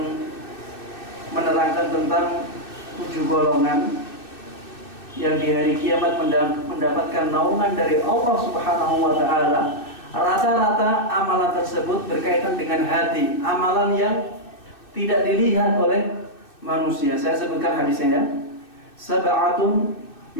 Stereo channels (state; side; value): late; right; 2.6 ms